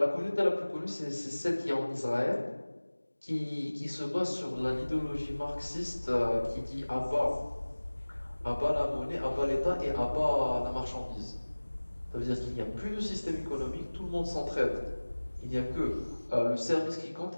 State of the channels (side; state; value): both; inverted; correlation -1.00